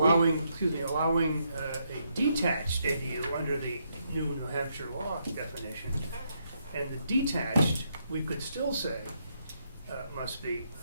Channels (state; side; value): inverted; both; correlation -0.77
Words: allowing a detached ADU under the new New Hampshire law definition. And the detached, we could still say, must be